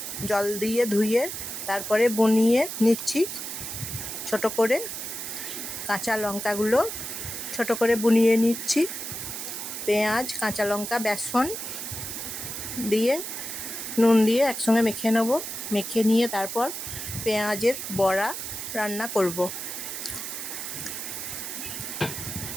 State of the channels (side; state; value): right; noise; hiss, 6 dB below the sound